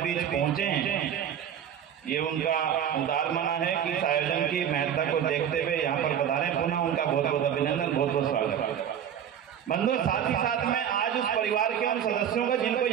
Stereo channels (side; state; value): left; quieter; 9.1 dB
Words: बीच पहुंचे हैं। ये उनका उदार मना है कि इस आयोजन की महत्ता को देखते हुए यहाँ पर पधारे। पुनः उनका बहुत बहुत अभिनंदन, बहुत बहुत स्वागत। बंधुओं, साथ ही साथ में आज उस परिवार के उन सदस्यों का जिनको